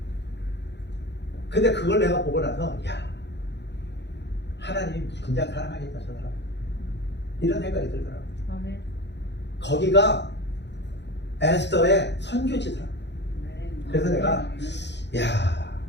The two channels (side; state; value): right; late; 0.51 ms